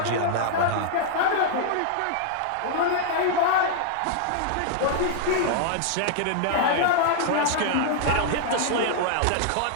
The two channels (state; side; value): different; both; correlation -0.01